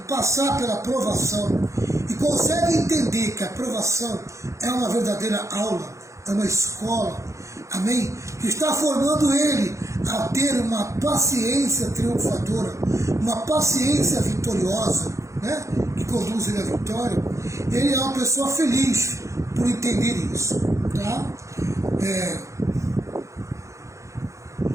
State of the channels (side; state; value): left; late; 0.15 ms